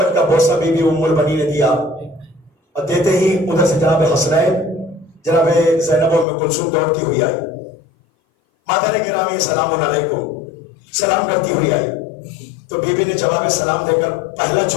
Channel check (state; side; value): drops out; right; at 6.2 s